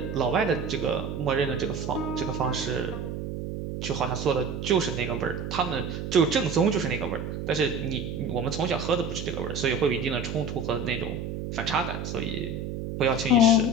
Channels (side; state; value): right; noise; hum, 5 dB below the sound